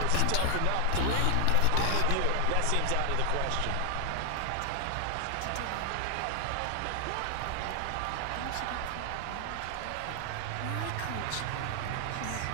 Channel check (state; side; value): different; both; correlation 0.00